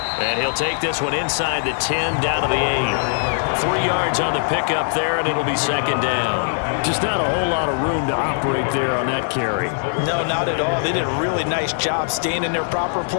And he'll take this one inside the 10 down to the 8. 3 yards on the pickup there, and it'll be 2nd down. Just not a whole lot of room to operate there on that carry. No, not at all. They did a really nice job staying in their proper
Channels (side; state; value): right; silent; 65 dB below the other